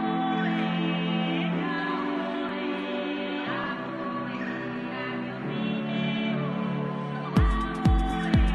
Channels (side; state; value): both; identical; correlation 1.00